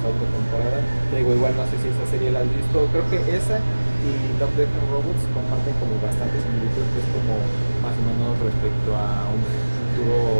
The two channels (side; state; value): both; inverted; correlation -1.00